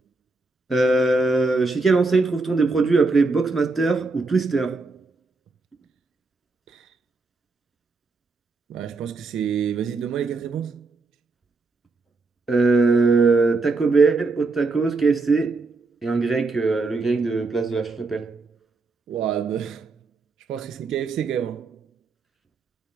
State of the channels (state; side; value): quieter; left; 3.8 dB